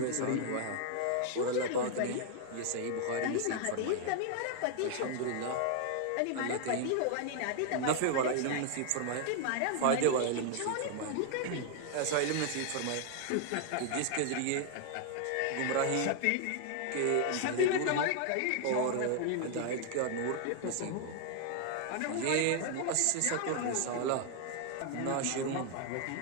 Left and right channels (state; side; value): different; both; correlation 0.00